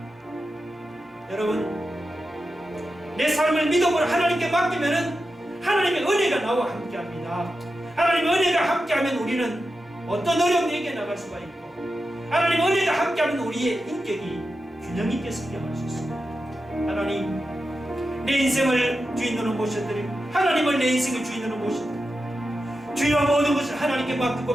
여러분 내 삶을 믿음으로 하나님께 맡기면은 하나님의 은혜가 나와 함께합니다. 하나님의 은혜가 함께하면 우리는 어떤 어려움도 이겨나갈 수가 있고, 하나님의 은혜가 함께하면 우리의 인격이 균형 있게 성장할 수 있습니다. 하나님, 내 인생을 주인으로 모셔드리고 하나님을 내 인생의 주인으로 모셔드리고 주여 모든 것을 하나님께 맡기고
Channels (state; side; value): normal; both; correlation 0.90